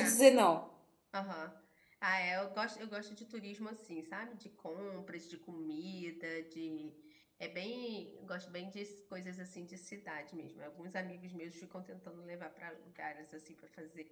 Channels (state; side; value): identical; both; correlation 1.00